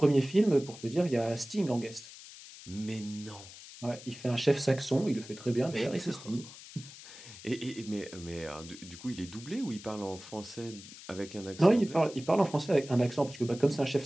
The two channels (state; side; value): noise; left; hiss, 16 dB below the sound